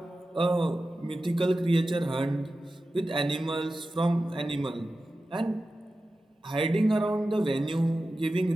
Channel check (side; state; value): both; normal; correlation 0.93